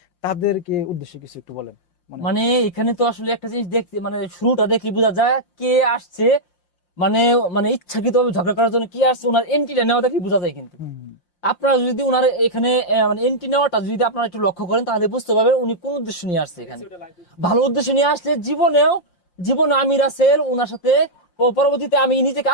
তাদেরকে উদ্দেশ্যে কিছু একটু বলেন। মানে এখানে তো আসলে একটা জিনিস দেখতে, মানে শুরুটা দেখলে বোঝা যায় কে আসছে, মানে মানে ইচ্ছাকৃত ঝগড়া করার জন্য কি আসছে, ওনার এন্ট্রিটা নেওয়া দেখলে বোঝা যায়। কিন্তু আপনারা যদি উনার এখানে মানে এন্ট্রি নেওয়াটা যদি আপনারা একটু লক্ষ্য করেন তাহলে বুঝতে পারবেন উনি কোন উদ্দেশ্য নিয়ে আসছে এখানে। ভালো উদ্দেশ্য নিয়ে আসলে জীবনে আমি রাসেল ওনার সাথে পরবর্তীতে আমি নিজেকে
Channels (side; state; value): right; late; 5.7 ms